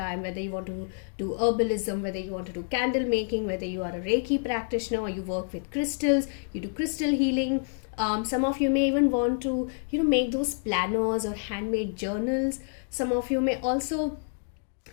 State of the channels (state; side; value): silent; right; digital silence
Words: whether you want to do herbalism, whether you want to do candle making, whether you are a Reiki practitioner or you work with crystals, you do crystal healing. Some of you may even want to, make those planners or handmade journals. Some of you may also